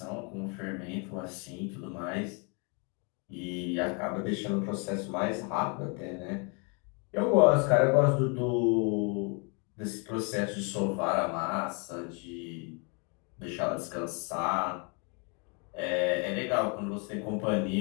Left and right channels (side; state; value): right; quieter; 34.8 dB